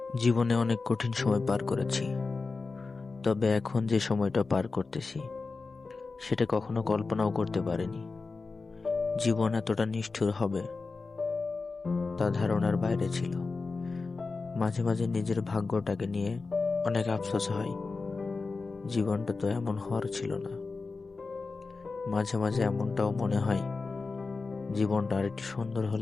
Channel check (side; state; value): right; quieter; 4.1 dB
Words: জীবনে অনেক কঠিন সময় পার করেছি, তবে এখন যে সময়টা পার করতেছি সেটা কখনো কল্পনাও করতে পারিনি। জীবন এতটা নিষ্ঠুর হবে তা ধারণার বাইরে ছিল। মাঝে মাঝে নিজের ভাগ্যটাকে নিয়ে অনেক আফসোস হয়, জীবনটা তো এমন হওয়ার ছিল না। মাঝে মাঝে এমনটাও মনে হয়, জীবনটা আর একটু সুন্দর